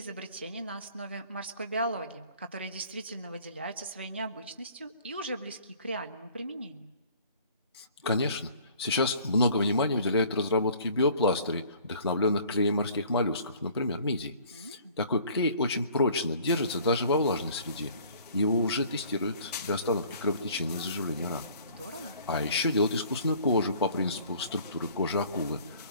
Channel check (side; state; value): both; inverted; correlation -0.53